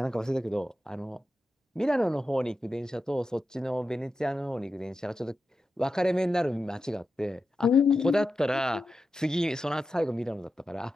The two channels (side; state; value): both; normal; correlation 0.90